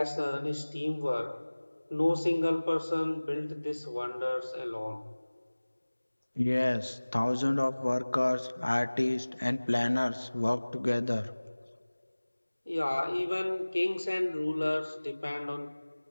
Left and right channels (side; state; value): both; inverted; correlation -1.00